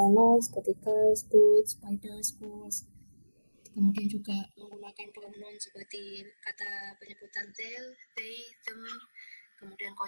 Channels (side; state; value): both; inverted; correlation -1.00